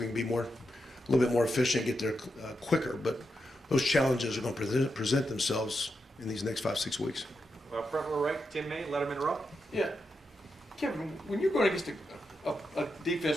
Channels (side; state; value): both; normal; correlation 0.86